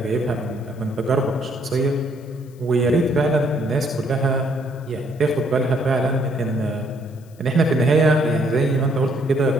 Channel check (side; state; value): left; noise; hiss, 30 dB below the sound